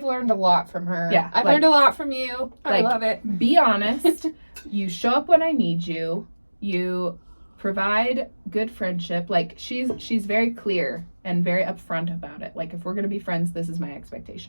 learned a lot from her. Yeah. I've learned a lot from you. I love it. Be honest. You show up when I need you. You provide good friendship. Like, she's very clear and very upfront about it. Like, if we're gonna be friends, this is my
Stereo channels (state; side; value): inverted; both; correlation -1.00